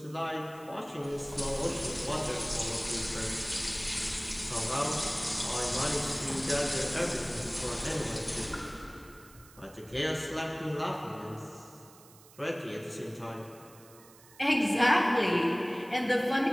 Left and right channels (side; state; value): right; noise; hiss, 23 dB below the sound